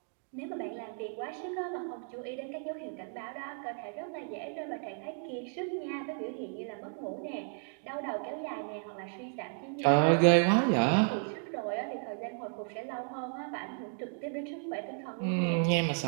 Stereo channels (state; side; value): silent; left; 55 dB below the other